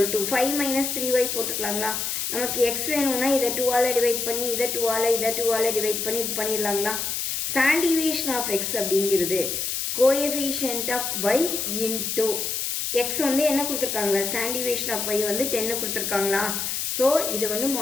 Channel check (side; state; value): left; noise; hiss, 2 dB below the sound